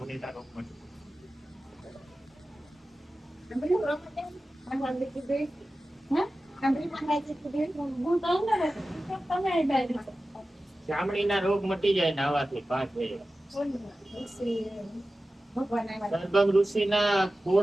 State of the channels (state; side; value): normal; both; correlation 0.95